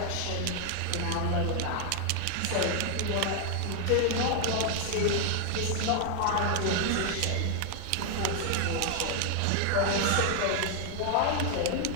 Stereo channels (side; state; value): both; different; correlation 0.00